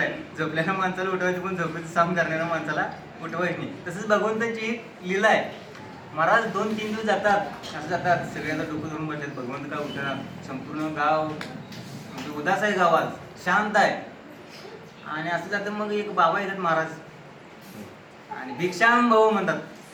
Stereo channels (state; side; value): identical; both; correlation 1.00